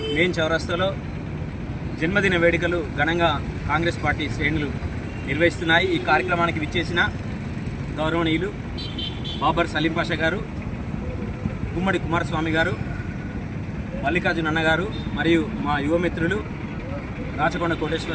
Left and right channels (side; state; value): both; identical; correlation 1.00